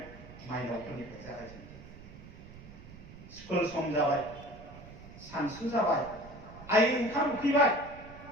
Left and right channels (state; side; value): noise; right; rumble, 16 dB below the sound